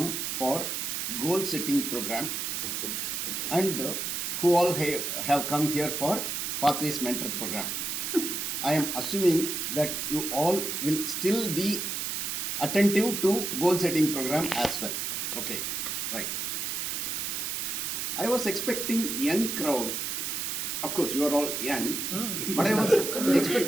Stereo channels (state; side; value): noise; right; hiss, 2 dB below the sound